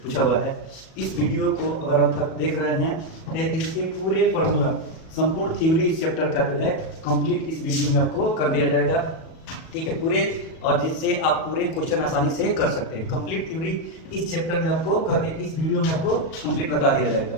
पूछा हुआ है। इस वीडियो को अगर आप तक देख रहे हैं तो इसके पूरे फॉर्मूला, संपूर्ण थ्योरी इस चैप्टर का जो है कंप्लीट इस वीडियो में आपको कर दिया जाएगा, ठीक है पूरे, और जिससे आप पूरे क्वेश्चन आसानी से कर सकते हैं। कंप्लीट थ्योरी इस चैप्टर में आपको करके इस वीडियो में आपको कंप्लीट बता दिया जाएगा,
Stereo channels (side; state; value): right; late; 37 ms